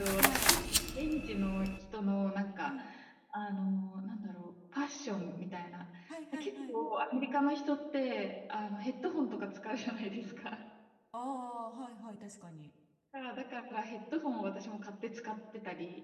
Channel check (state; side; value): identical; both; correlation 1.00